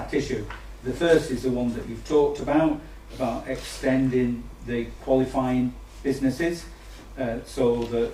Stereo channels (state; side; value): identical; both; correlation 1.00